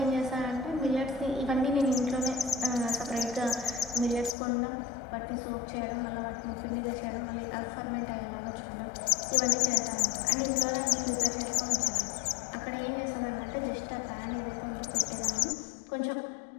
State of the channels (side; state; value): right; drops out; at 4.4 s